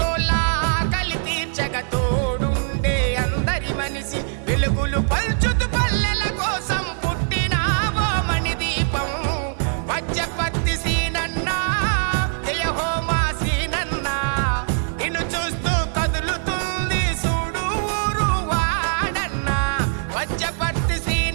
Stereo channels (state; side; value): silent; left; digital silence